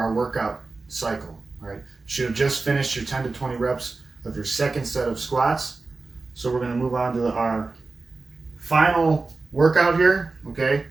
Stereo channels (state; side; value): quieter; left; 3.8 dB